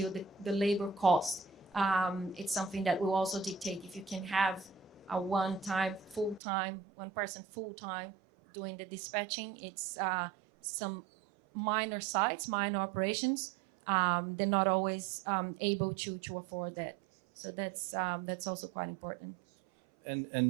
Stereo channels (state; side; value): drops out; left; at 6.4 s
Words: the labor cost, it's something that will also dictate if you can have a one person full-time doing the dispatching. It's some minor sites, minor operations, they're not always able to afford that. So that's also quite important.